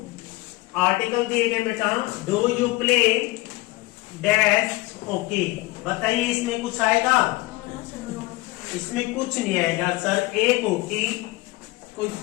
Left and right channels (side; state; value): right; quieter; 20.9 dB